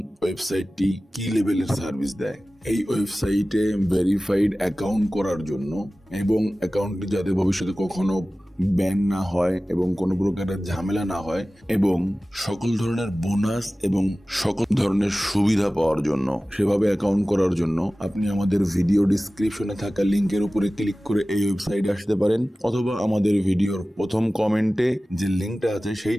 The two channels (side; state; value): both; normal; correlation 0.97